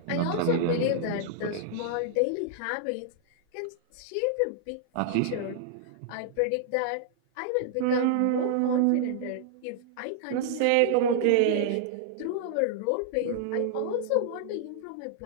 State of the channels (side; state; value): both; different; correlation -0.01